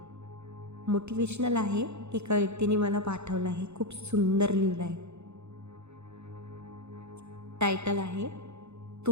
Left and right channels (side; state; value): left; late; 0.81 ms